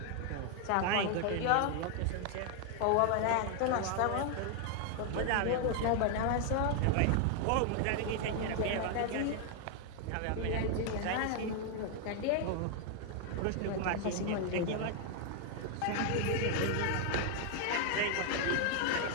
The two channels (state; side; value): different; both; correlation 0.00